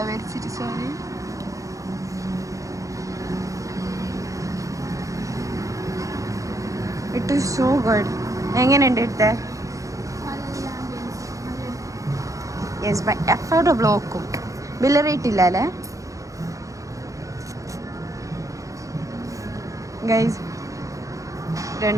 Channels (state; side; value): late; left; 0.16 ms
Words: വരച്ചിട്ട് sorry. It is so good. എങ്ങനെയുണ്ട് ഇട്ടേ? യെസ് ബൈ അഫോർഡബിൾ നോക്കും. ബില്ല് റേറ്റ് ഇല്ല അല്ലേ ഗൈസ്?